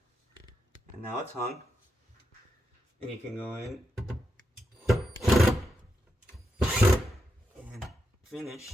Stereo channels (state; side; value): normal; both; correlation 0.85